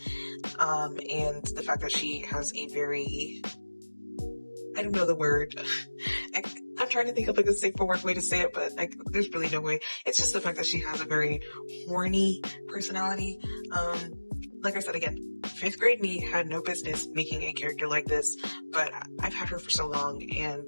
and the fact that she has a very, I don't know the word. I'm trying to think of like a safe for work way to say it, but like there's really no way. It's just the fact that she has a very horny personality. Like I said again, 5th grade me had no business making a character like this, but I've had her for so long, and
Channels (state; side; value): inverted; both; correlation -1.00